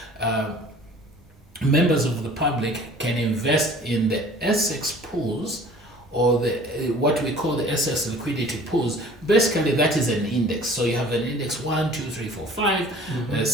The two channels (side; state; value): both; normal; correlation 0.48